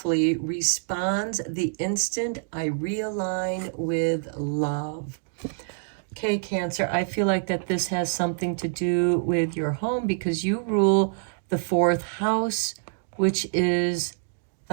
responds the instant I realign with love. Okay, Cancer, I feel like that this has something to do with your home because you rule the 4th house, which is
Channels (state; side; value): silent; left; digital silence